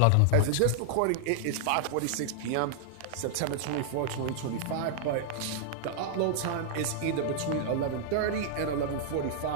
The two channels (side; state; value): both; different; correlation -0.01